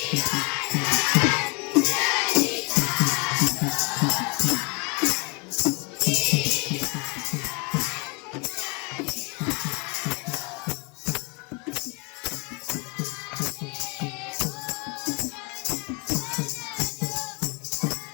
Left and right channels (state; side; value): quieter; right; 30.7 dB